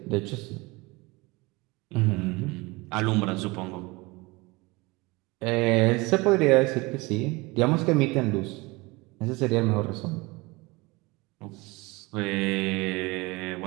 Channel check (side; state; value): left; quieter; 23.9 dB